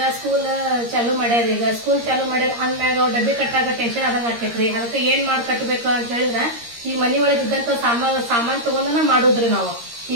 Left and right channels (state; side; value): late; left; 13 ms